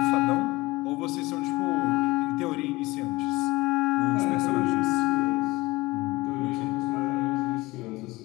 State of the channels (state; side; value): quieter; right; 20.6 dB